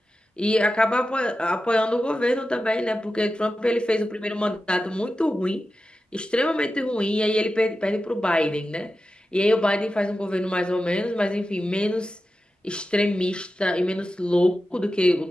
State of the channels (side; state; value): both; normal; correlation 0.92